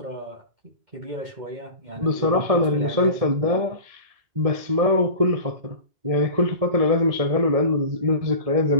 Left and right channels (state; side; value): late; left; 1.7 ms